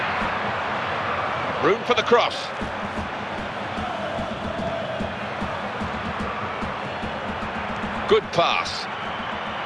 Room for the cross. Good pass.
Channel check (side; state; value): both; identical; correlation 1.00